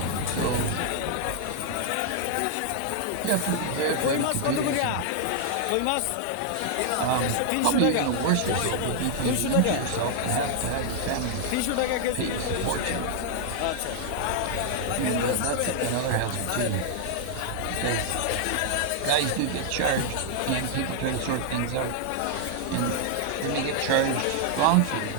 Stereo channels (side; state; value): both; different; correlation -0.01